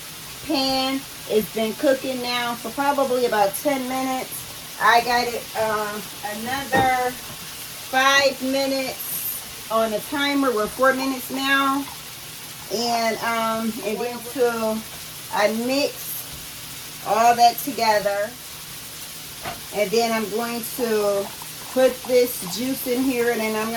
pan. It's been cooking now for probably about 10 minutes. I got it another 5 minutes on the timer. We're 4 minutes now. And then till I mix all that together. And then I'm going to put this juice in here and then I'm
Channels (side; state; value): both; identical; correlation 1.00